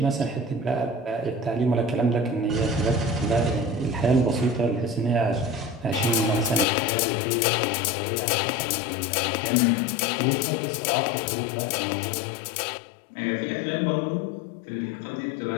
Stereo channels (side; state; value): right; drops out; at 6.7 s